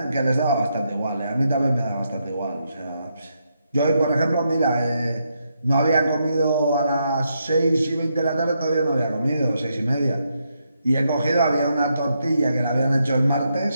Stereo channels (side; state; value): both; inverted; correlation -0.80